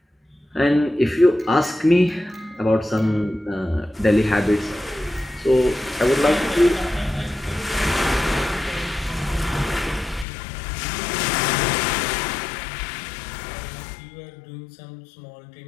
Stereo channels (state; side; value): drops out; right; at 10.2 s